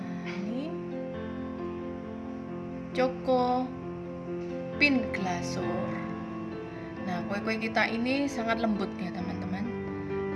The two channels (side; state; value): both; identical; correlation 1.00